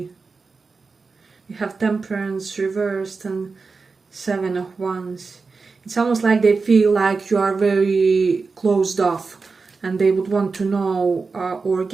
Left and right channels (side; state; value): left; quieter; 4.4 dB